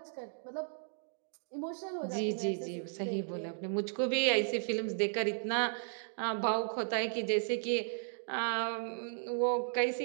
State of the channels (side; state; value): left; silent; digital silence